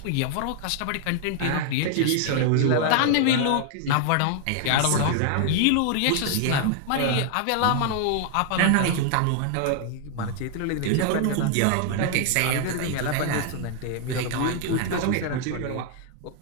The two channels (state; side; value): different; both; correlation 0.00